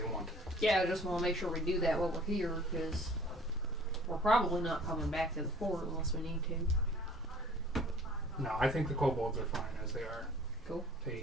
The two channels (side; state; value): both; normal; correlation 0.50